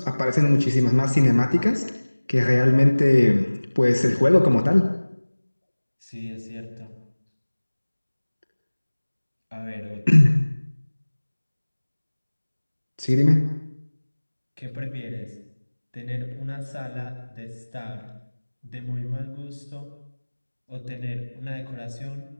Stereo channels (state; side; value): inverted; both; correlation -1.00